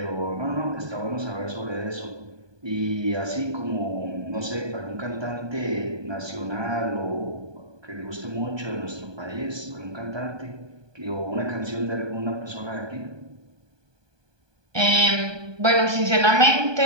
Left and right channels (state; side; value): late; left; 1.2 ms